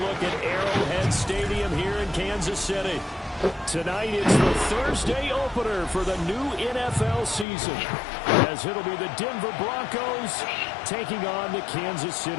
back at Arrowhead Stadium here in Kansas City. Tonight it's the Thursday opener for the new NFL season, as it'll be the Denver Broncos taking on the Kansas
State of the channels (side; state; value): right; drops out; at 7.5 s